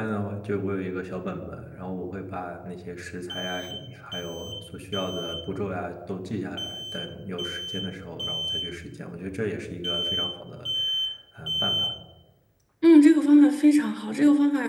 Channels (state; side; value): identical; both; correlation 1.00